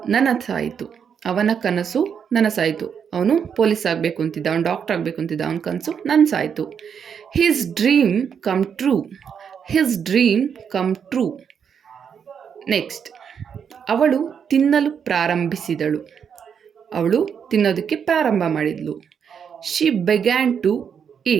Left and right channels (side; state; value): left; quieter; 7.3 dB